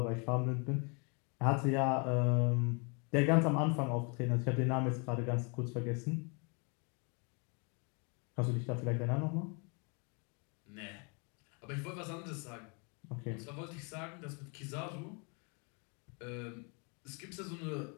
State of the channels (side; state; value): right; quieter; 34.5 dB